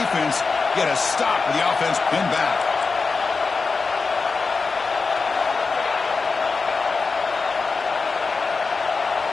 get a stop with the offense pinned back.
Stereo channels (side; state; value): right; quieter; 4.4 dB